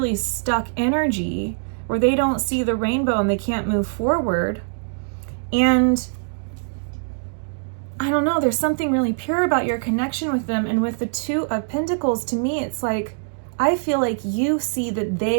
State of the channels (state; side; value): silent; left; digital silence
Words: stuck energy where they don't see the rainbow and they can't move forward. And I don't know, there's something really pure about your connection with them. And with the Two of Pentacles, to me, it's like, I feel like you see that